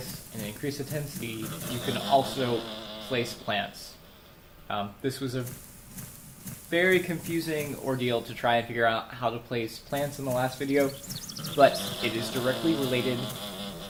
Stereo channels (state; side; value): identical; both; correlation 1.00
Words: and increase the intensity, you can also place plants. This was a very confusing ordeal to try and figure out how to place plants in the last video, but it is directly related,